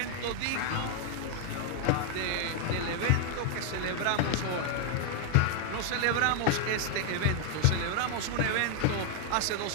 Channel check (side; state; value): both; different; correlation 0.00